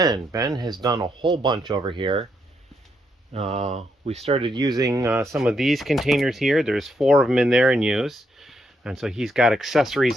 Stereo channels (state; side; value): normal; both; correlation 0.78